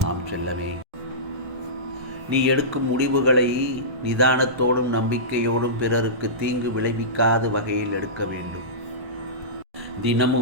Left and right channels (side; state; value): left; late; 1.2 ms